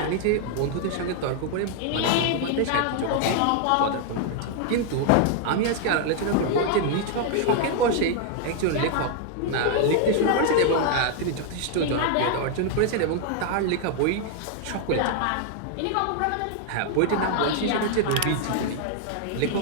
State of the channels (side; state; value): both; different; correlation 0.00